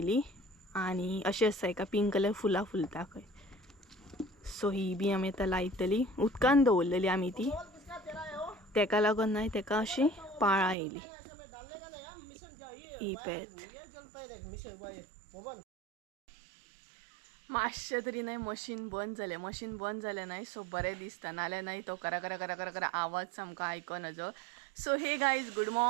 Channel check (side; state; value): left; drops out; at 10.8 s